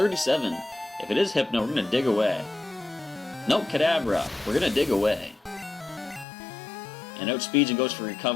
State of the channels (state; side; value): drops out; right; at 6.2 s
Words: If it is Hypno, we're going to dig away. Nope, Kadabra. We're going to dig away. And outspeeds and goes for